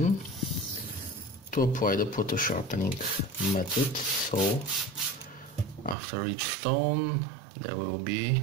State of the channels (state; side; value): drops out; left; at 6.0 s